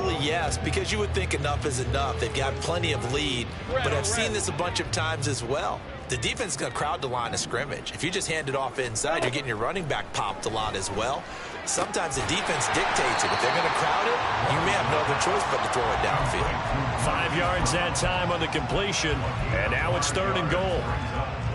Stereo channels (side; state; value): both; identical; correlation 1.00